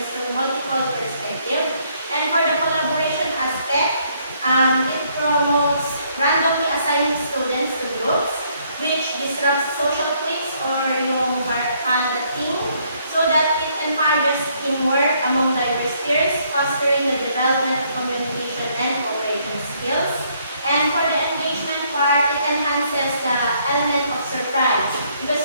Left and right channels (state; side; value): inverted; both; correlation -0.68